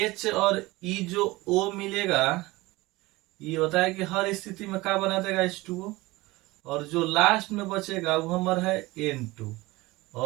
और E जो O मिलेगा, ये होता है कि हर स्थिति में क्या बना देगा? H2O। और जो लास्ट में बचेगा वो हमारा है N2,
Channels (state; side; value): quieter; left; 20.7 dB